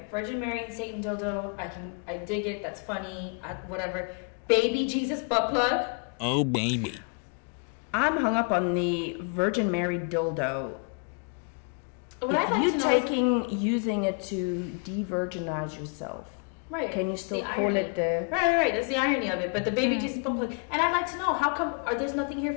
Virgin Mary and Satan dildo. I dig it. That's funny. Whatever. Baby Jesus butt plug. Oh, baby. I'm hung up on the Virgin Mary dildo. What I'd like to know using it to de-virginize yourself. Right. Can you still call irony. it the... Right. That's the irony of it. But the Baby Jesus butt plug. And I'd like to know, how come there's nothing here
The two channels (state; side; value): quieter; right; 38.6 dB